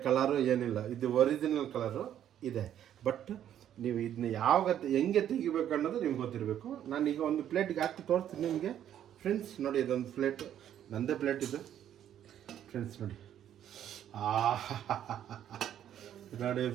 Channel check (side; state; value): left; quieter; 10.5 dB